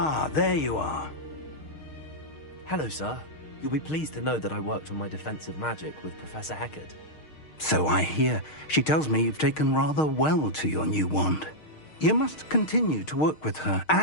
there you are. Hello, sir. You'll be pleased to know that I worked on my defensive magic with Professor Heckard. So I hear. She tells me you've taken rather well to your new wand. You must continue to work with her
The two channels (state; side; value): late; right; 6.5 ms